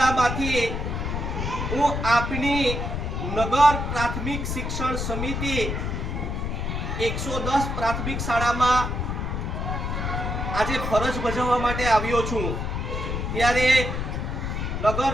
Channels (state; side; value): noise; left; rumble, 2 dB below the sound